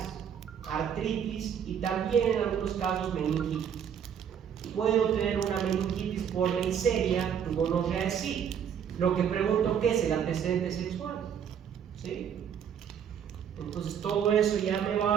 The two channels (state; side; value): quieter; left; 8.3 dB